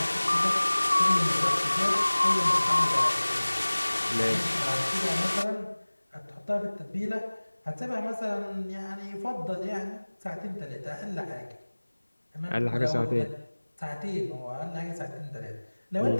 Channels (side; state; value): both; inverted; correlation -1.00